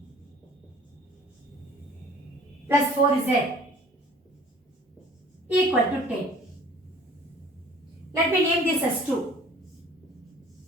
plus 4z equal to 10. Let me name this as 2.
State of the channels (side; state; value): both; normal; correlation 0.51